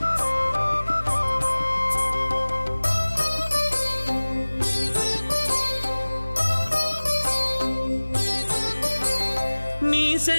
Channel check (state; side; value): inverted; both; correlation -1.00